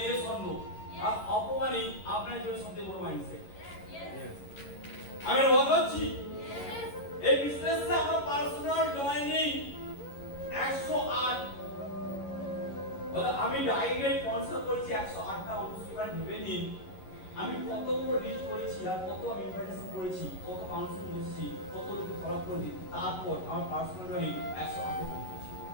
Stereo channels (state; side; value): late; right; 11 ms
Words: এই স্বর্ণ আর অপমানই আপনার জন্য সবচেয়ে বড় মাইন্ডসেট আমি বলছি এই বিজনেসে আমার পার্সোনাল জয়েনিং 108 বলে আমি ডাইরেক্ট স্পন্সর করেছি 108টা অনুষ্ঠান ভেবে নিন আমি কত বড় রিচ করেছি আর কত আমি ইনভাইটেশন করেছি কত কাউন্সিলিং করেছি কত লোক ফলো করেছি তারপর আমার পার্সোনাল জয়েনিং 108 পৌঁছেছি